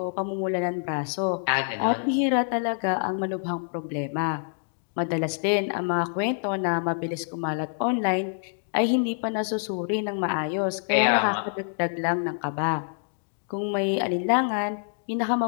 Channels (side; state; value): right; silent; digital silence